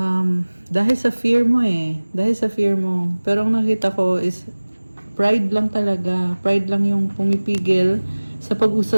dahil sa fear mo eh. Dahil sa fear mo. Pero ang nakita ko is pride lang talaga. Pride lang yung pumipigil sa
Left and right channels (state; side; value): inverted; both; correlation -1.00